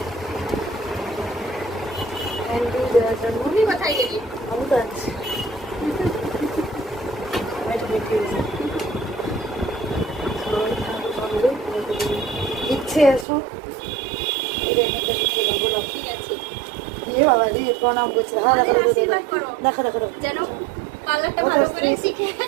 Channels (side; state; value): left; drops out; at 13.2 s